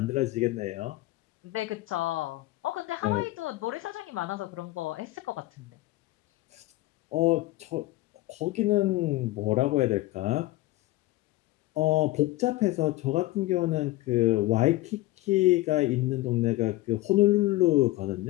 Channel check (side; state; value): right; quieter; 18.2 dB